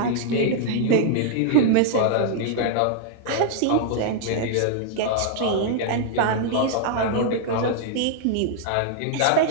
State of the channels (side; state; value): both; different; correlation -0.01